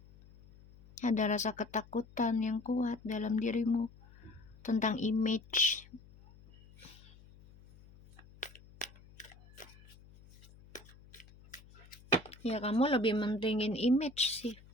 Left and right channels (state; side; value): noise; left; hum, 23 dB below the sound